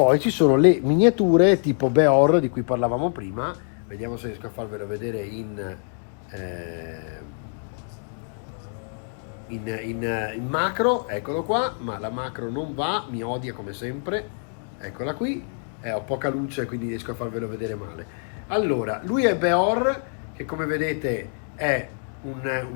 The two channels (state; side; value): silent; right; 60 dB below the other